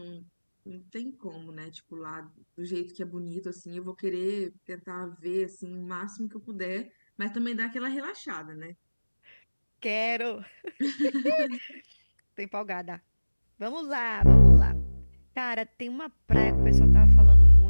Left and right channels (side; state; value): both; inverted; correlation -1.00